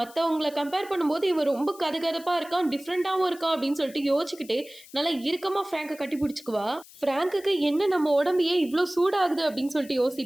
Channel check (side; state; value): left; noise; hiss, 21 dB below the sound